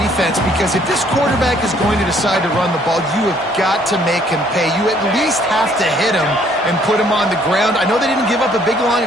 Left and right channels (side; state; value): both; normal; correlation 0.63